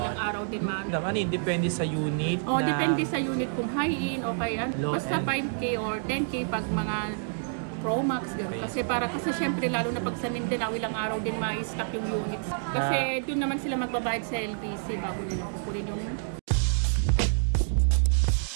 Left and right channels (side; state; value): left; silent; digital silence